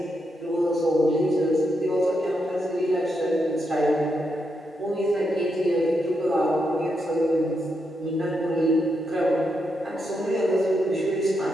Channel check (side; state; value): both; normal; correlation 0.82